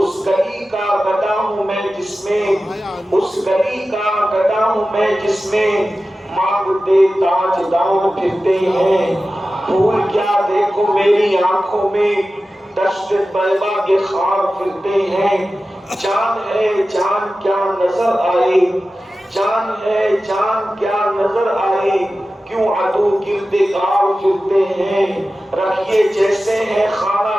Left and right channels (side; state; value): both; normal; correlation 0.94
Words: گلی کا گدا ہوں میں جس میں، اس گلی کا گدا ہوں میں جس میں مانگتے تاجدار پھرتے ہیں۔ پھول کیا دیکھو میری آنکھوں میں، دشت طیبہ کے خار پھرتے ہیں۔ جان ہے جان کیا نظر آئے، جان ہے جان کیا نظر آئے، کیوں عدو گرد کار پھرتے ہیں۔ رکھیے جیسے ہیں